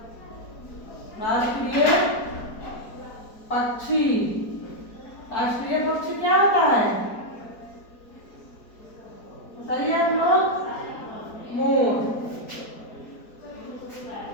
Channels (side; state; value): right; late; 4.5 ms